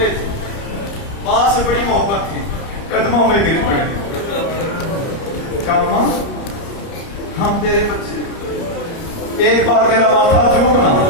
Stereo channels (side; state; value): right; late; 30 ms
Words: تھے، ماں سے بڑی محبت تھی، قدموں میں گر پڑے. کہا ماں ہم تیرے بچے، ایک بار میرا ماتھا چومنا.